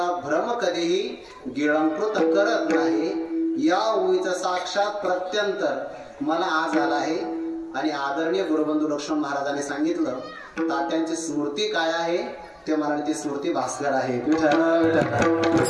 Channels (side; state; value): both; identical; correlation 1.00